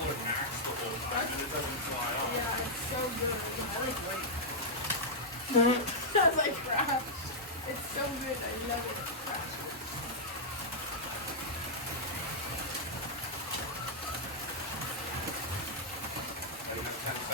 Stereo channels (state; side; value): normal; both; correlation -0.06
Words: max the whole time and it doesn't fly off. Yeah, it's so good. I like white. That's like crap. It's so good. I love it. Crap. I have 10